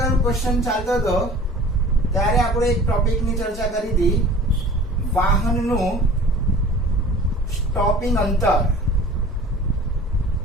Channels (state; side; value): normal; both; correlation 0.44